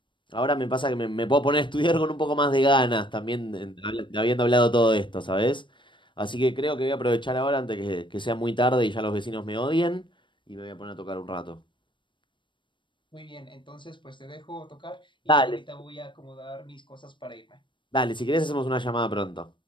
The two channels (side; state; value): right; late; 0.23 ms